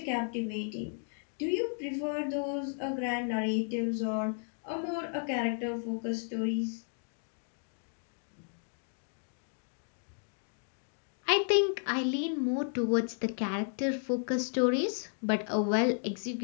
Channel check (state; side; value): silent; right; 55 dB below the other